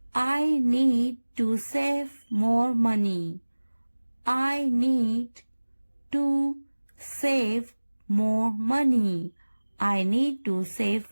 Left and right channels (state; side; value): inverted; both; correlation -1.00